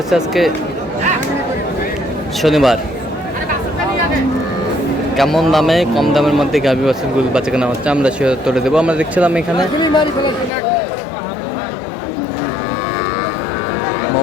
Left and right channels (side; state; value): right; drops out; at 10.5 s